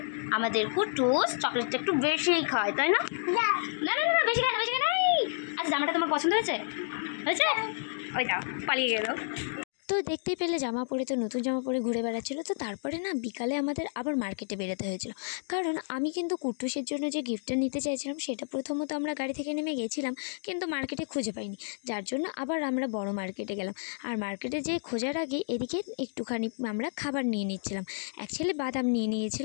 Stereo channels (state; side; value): silent; right; digital silence